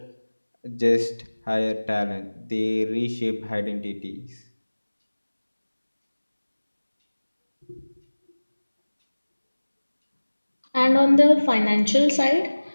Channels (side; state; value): both; inverted; correlation -1.00